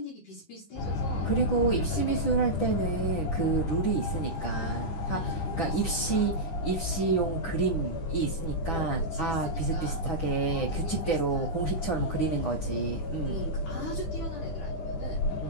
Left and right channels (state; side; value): late; right; 10 ms